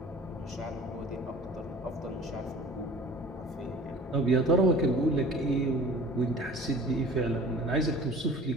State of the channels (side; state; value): both; normal; correlation 0.45